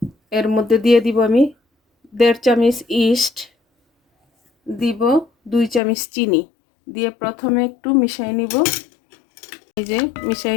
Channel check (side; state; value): right; drops out; at 5.8 s